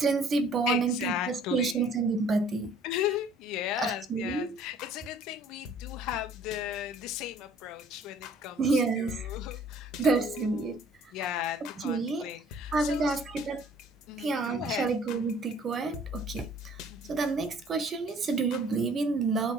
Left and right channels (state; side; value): normal; both; correlation 0.56